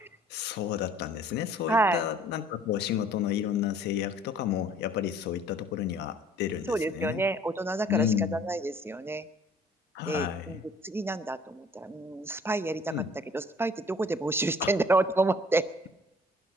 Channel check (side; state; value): both; normal; correlation 0.54